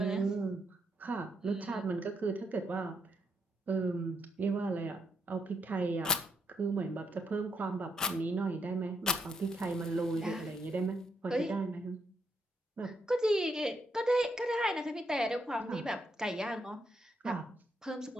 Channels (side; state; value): both; normal; correlation 0.77